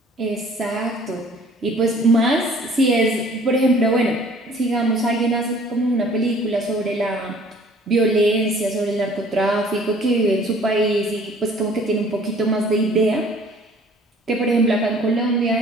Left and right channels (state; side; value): normal; both; correlation 0.54